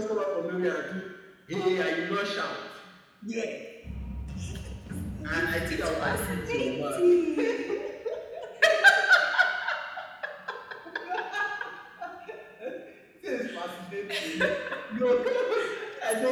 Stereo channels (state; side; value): identical; both; correlation 1.00